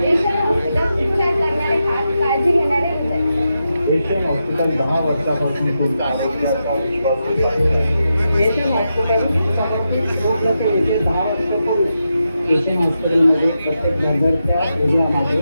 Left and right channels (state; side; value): inverted; both; correlation -0.87